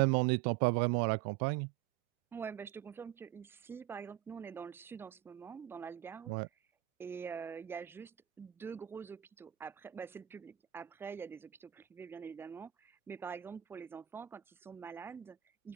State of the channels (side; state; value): left; quieter; 14.4 dB